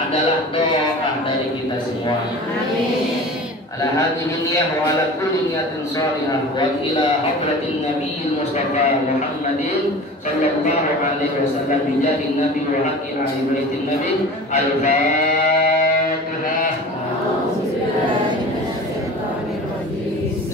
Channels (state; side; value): normal; both; correlation 0.38